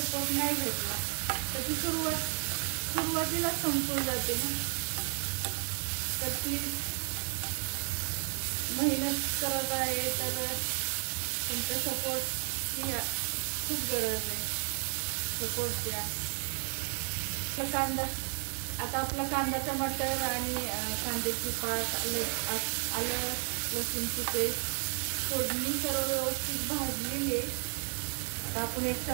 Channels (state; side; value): silent; left; 56 dB below the other